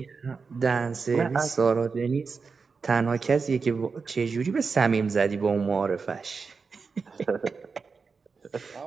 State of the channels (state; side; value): quieter; left; 4.9 dB